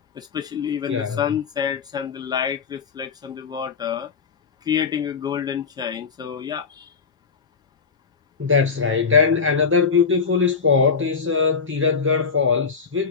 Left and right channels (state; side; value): quieter; right; 5.4 dB